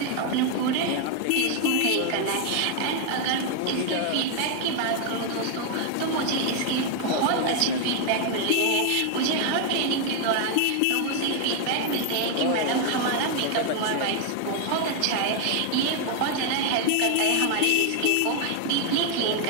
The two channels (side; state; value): both; different; correlation 0.00